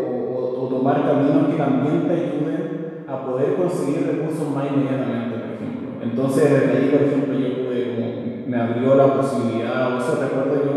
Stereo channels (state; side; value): identical; both; correlation 1.00